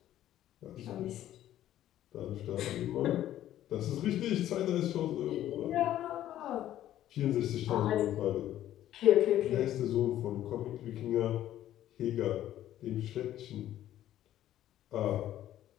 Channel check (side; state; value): right; quieter; 12.6 dB